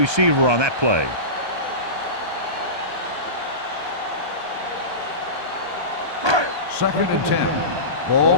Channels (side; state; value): left; late; 1.2 ms